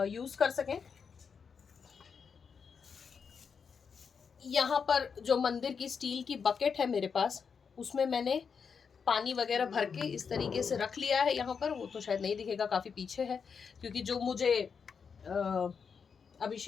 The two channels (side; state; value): right; quieter; 6.1 dB